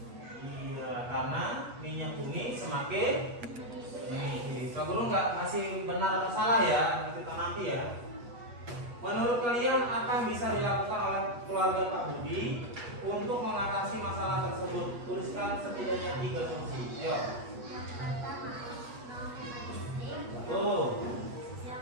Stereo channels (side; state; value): left; late; 8.3 ms